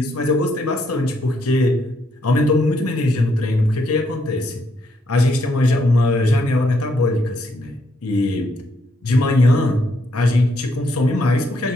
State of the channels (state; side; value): normal; both; correlation 0.74